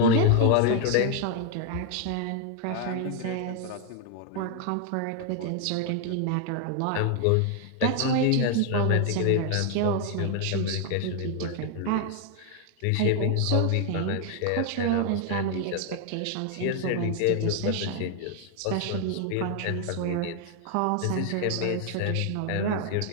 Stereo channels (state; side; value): different; both; correlation 0.00